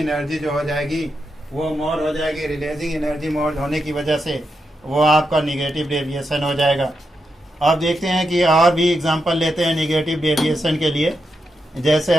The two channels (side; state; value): both; normal; correlation 0.85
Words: जो हो जाएगी वो मोर हो जाएगी। रिलीजिंग एनर्जी मोर होने की वजह से वो आपका निगेटिव डेविएशन हो जाएगा। अब देखते हैं कि और भी एग्जांपल लेते हैं नेगेटिव डेविएशन के लिए। जैसे